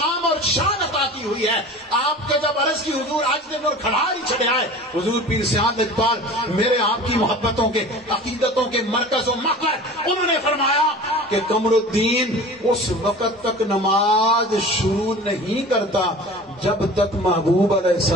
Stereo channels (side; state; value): both; normal; correlation 0.39